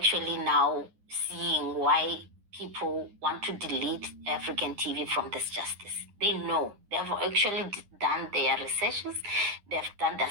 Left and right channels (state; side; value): late; left; 9.9 ms